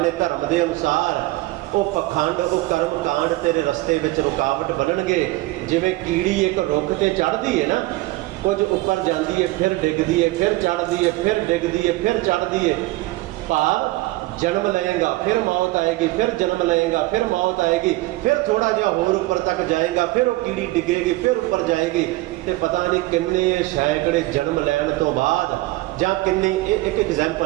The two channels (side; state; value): left; quieter; 19.6 dB